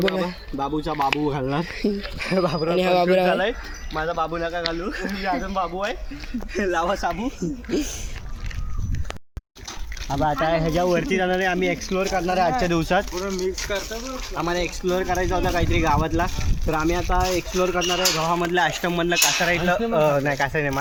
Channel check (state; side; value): identical; both; correlation 1.00